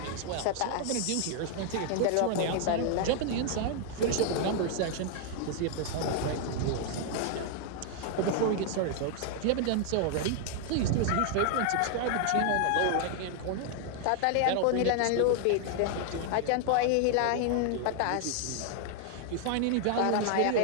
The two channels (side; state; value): both; different; correlation 0.00